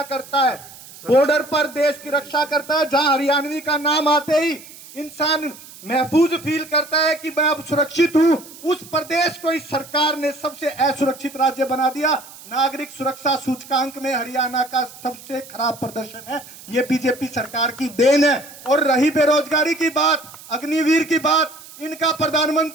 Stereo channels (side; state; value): right; noise; hiss, 18 dB below the sound